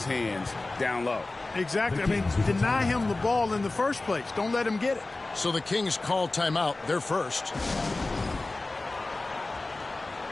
hands down low. Exactly. I mean, deny him the ball in the first place. Don't let him get it. So the Kings call timeout. They're first.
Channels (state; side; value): quieter; right; 3.1 dB